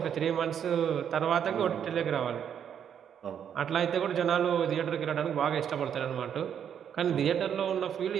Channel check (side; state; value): left; quieter; 8.6 dB